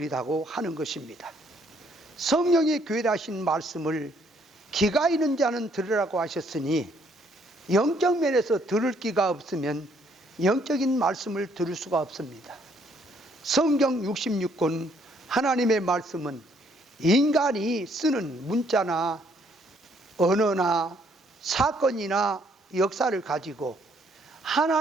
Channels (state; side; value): normal; both; correlation 0.67